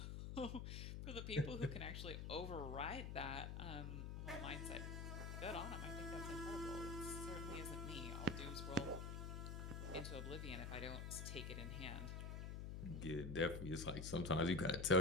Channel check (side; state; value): left; noise; hum, 4 dB below the sound